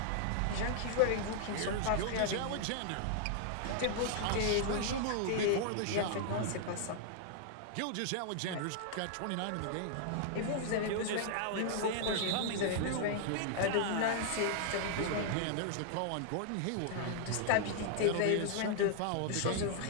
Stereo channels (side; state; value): both; different; correlation -0.01